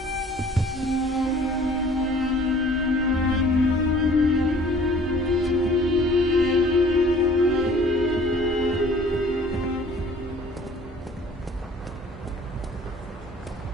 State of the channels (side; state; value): both; normal; correlation 0.52